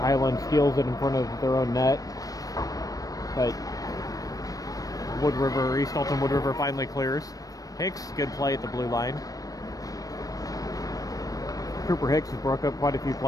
steals it in front of their own net. But East Alton Wood River finally clears. Hicks, good play at the blue line. Cooper Hicks has broke up quite a few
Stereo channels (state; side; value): late; right; 0.18 ms